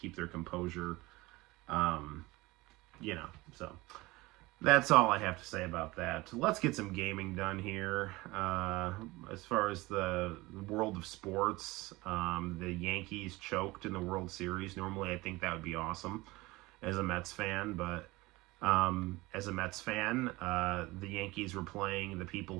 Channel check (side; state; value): left; quieter; 21.2 dB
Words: their composure, you know. So that's all I have to say about that. Let's get some gaming done here. As far as the world of sports, the Yankees choked in the World Series. Normally, I think that would be awesome as a Mets fan, but as a Mets fan, the Yankees were playing the people